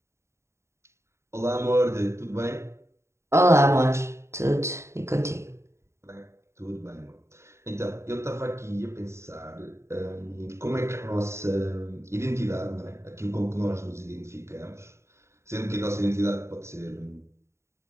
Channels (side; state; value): left; late; 0.13 ms